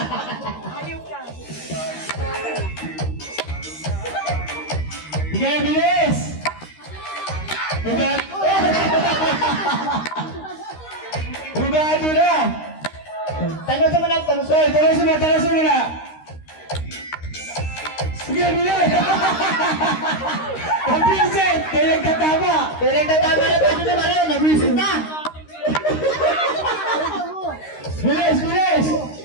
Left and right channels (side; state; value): right; late; 13 ms